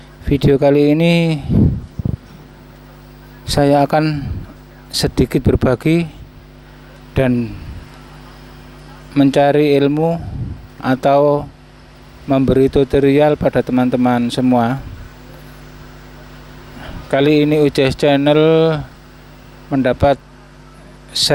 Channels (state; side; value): identical; both; correlation 1.00